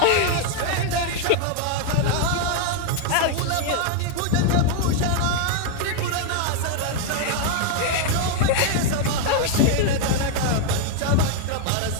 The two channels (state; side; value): different; both; correlation 0.01